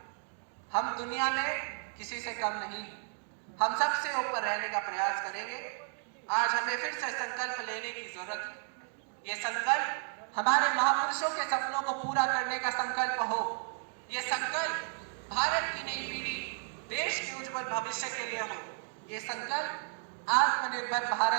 हम दुनिया में किसी से कम नहीं, हम सबसे ऊपर रहने का प्रयास करेंगे। आज हमें फिर से संकल्प लेने की जरूरत है। ये संकल्प हमारे महापुरुषों के सपनों को पूरा करने का संकल्प हो। ये संकल्प भारत की नई पीढ़ी, देश के उज्जवल भविष्य के लिए हो। ये संकल्प आत्मनिर्भर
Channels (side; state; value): left; silent; 56 dB below the other